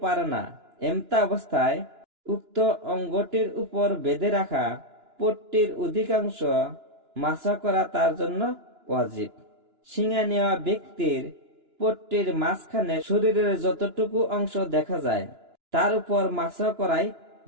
পারে না। এমতা অবস্থায় উক্ত অঙ্গটির উপর বেঁধে রাখা পট্টির অধিকাংশ মাসাহ করা তার জন্য ওয়াজিব। শিঙা নেওয়া ব্যক্তির পট্টির মাঝখানে শরীরের যতটুকু অংশ দেখা যায় তার উপর মাসাহ করাই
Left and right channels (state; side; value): late; left; 2.9 ms